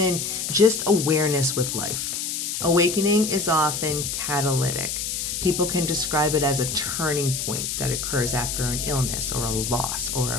just awareness with life. Awakening is often catalytic. People can describe it as a turning point that occurs after an illness or a loss or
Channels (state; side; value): noise; left; hiss, 3 dB below the sound